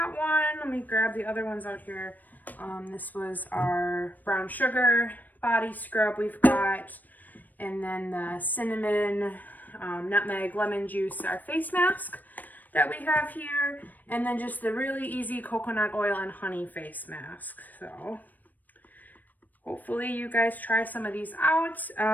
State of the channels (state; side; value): late; right; 0.085 ms